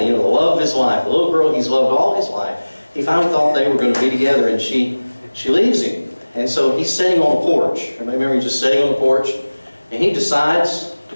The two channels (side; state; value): both; inverted; correlation -1.00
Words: the love of his life, the little girl he's loved all his life, he finally thought they were going to be together, and she leaves him. And so he's sitting on a porch. I remember he's just sitting on the porch, and he decides to